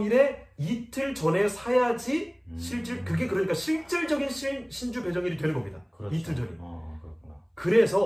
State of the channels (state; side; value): identical; both; correlation 1.00